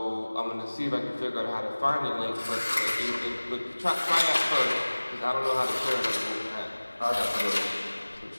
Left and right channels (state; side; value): inverted; both; correlation -1.00